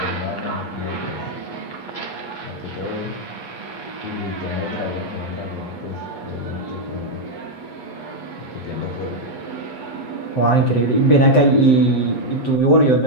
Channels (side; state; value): right; late; 11 ms